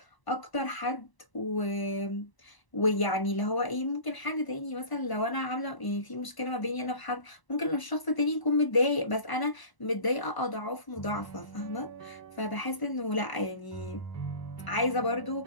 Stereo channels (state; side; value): late; right; 1.0 ms